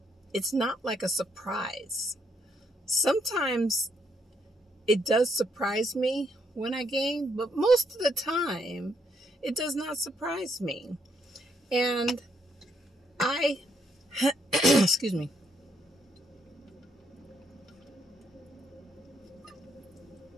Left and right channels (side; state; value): both; normal; correlation 0.74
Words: It's not like a surprise. Sometimes it does surprise me when I gain, but most of the time it does not surprise me. And excuse me.